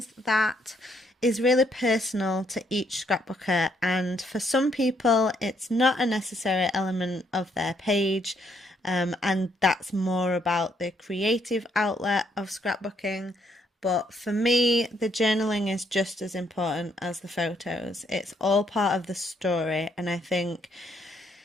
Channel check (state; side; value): normal; both; correlation 0.71